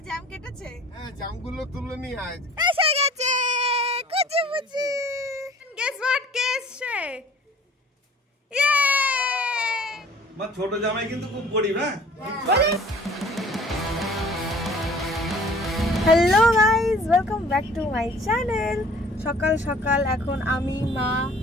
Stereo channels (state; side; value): normal; both; correlation 0.50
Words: জ্যাম কেটেছে? হ্যাঁ, জ্যামগুলো তুলে নিয়ে আয়। এসে গেছে কুচি মুচি। Guess what কেসে? ইয়ে! মা ছোট জামাই কিন্তু খুব গরিব, হ্যাঁ? Hello guys, welcome back to my channel. সকাল সকাল এখন আমি, মা